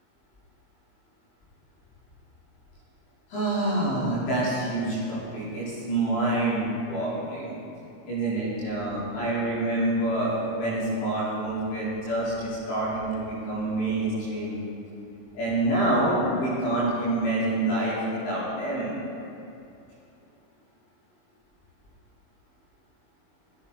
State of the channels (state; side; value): late; right; 23 ms